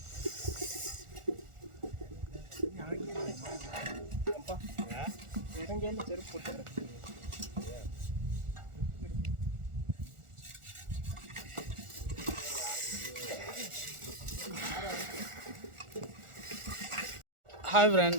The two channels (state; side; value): late; left; 1.4 ms